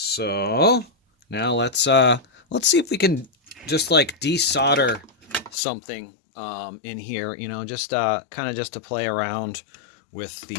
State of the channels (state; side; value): drops out; right; at 5.6 s